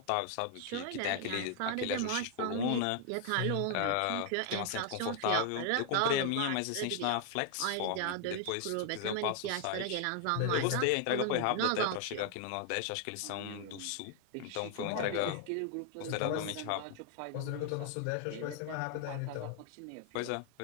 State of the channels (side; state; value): both; different; correlation 0.00